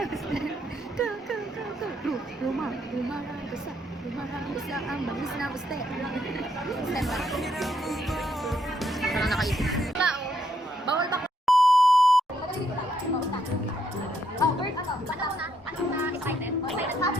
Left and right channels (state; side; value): normal; both; correlation 0.74